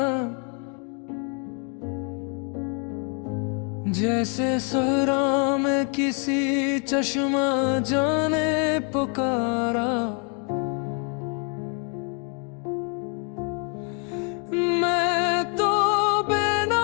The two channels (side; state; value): right; quieter; 38.0 dB